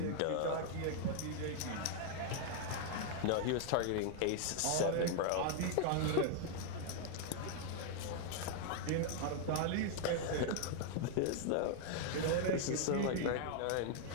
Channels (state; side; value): different; both; correlation 0.00